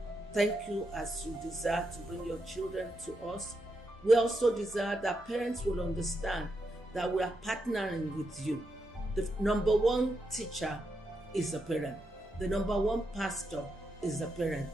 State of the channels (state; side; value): normal; both; correlation 0.84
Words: Thank you as you desire to bring your children to us. We also desire that parents will understand that we are partnering with you. The number one teacher is a parent. The number one pastor is a parent.